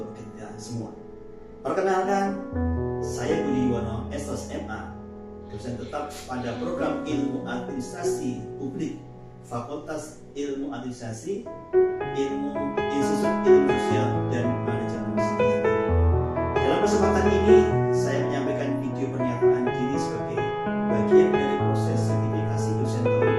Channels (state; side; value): identical; both; correlation 1.00